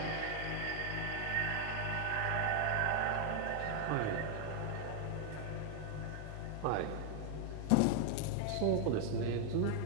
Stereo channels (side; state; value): both; different; correlation 0.00